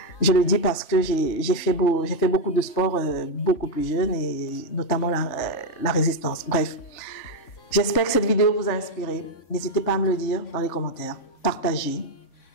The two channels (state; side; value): late; right; 3.5 ms